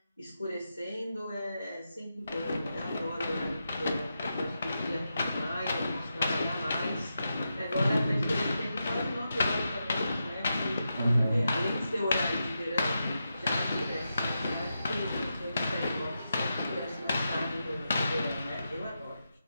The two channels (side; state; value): both; inverted; correlation -0.88